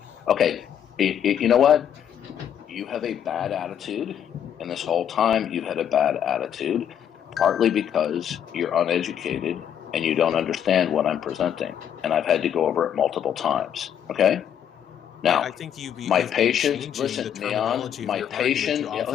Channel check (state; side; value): quieter; right; 9.2 dB